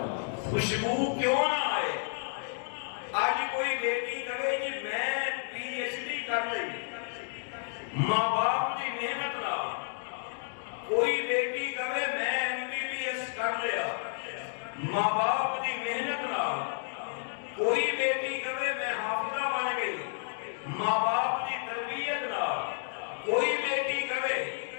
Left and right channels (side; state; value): right; silent; digital silence